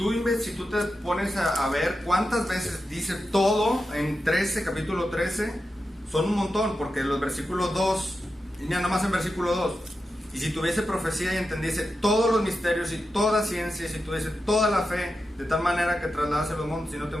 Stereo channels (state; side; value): normal; both; correlation 0.90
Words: te pones a ver cuántas veces dice todo en capítulo 13, son un montón, porque los versículos 2, nada más en versículo 2, y si tuviese profecía y entendiese todos los misterios y toda ciencia, y si tuviese toda la fe, de tal manera que trasladase los montes y no